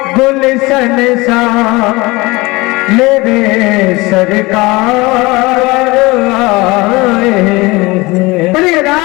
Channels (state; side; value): quieter; right; 22.9 dB